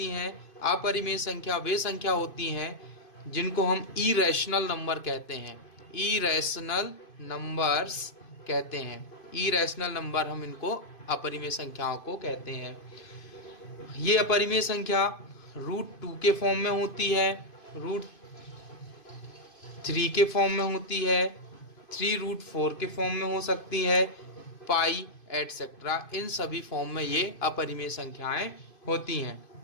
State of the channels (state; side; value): late; right; 2.5 ms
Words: हैं? अपरिमेय संख्या वे संख्या होती हैं जिनको हम इरेशनल नंबर कहते हैं। इरेशनल नंबर्स कहते हैं। इरेशनल नंबर हम इनको अपरिमेय संख्याओं को कहते हैं। ये अपरिमेय संख्या √2 के फॉर्म में होती है, √3 के फॉर्म में होती है, 3√4 के फॉर्म में हो सकती है, पाई एटसेट्रा। इन सभी फॉर्म में ये अपरिमेय संख्याएं होती हैं।